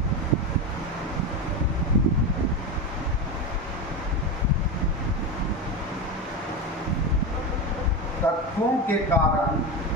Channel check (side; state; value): both; normal; correlation 0.18